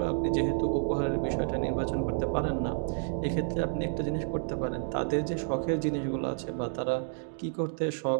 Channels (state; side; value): silent; left; digital silence